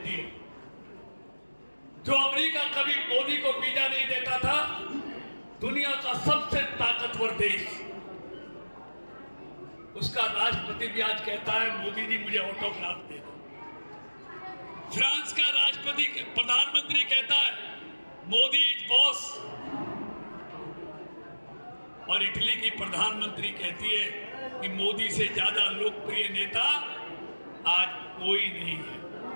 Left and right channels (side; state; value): both; inverted; correlation -1.00